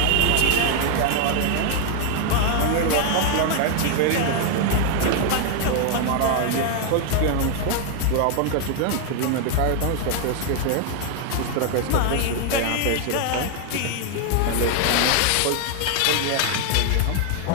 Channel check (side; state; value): both; different; correlation 0.00